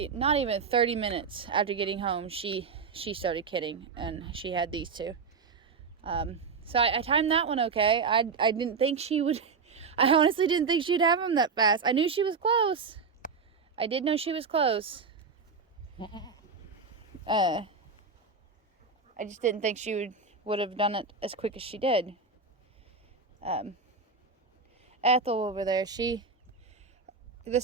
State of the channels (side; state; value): left; quieter; 5.0 dB